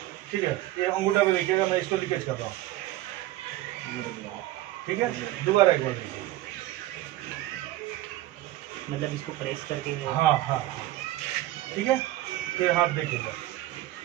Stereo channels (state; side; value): quieter; left; 15.8 dB